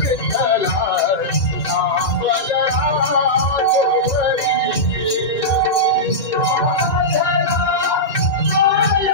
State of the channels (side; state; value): right; late; 3.0 ms